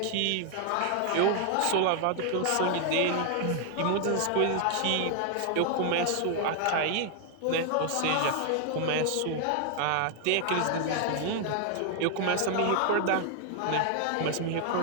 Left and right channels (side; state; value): both; different; correlation 0.00